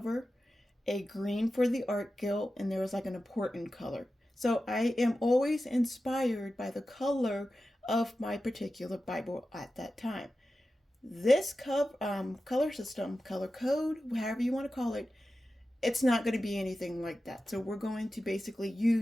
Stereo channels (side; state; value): both; normal; correlation 0.93